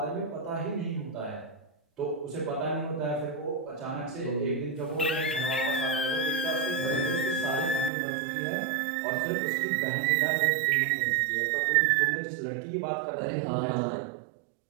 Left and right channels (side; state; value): left; drops out; at 7.9 s